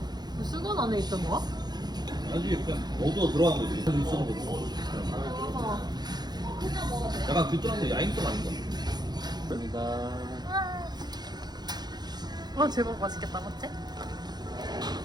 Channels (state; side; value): late; left; 0.20 ms